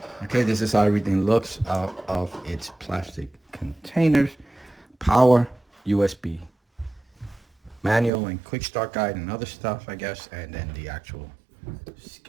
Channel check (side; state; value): left; drops out; at 8.1 s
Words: Okay, this is how everything looks out of its plastic containers. Power, USB, manual and quick start guide and other stuff, I guess, and then the actual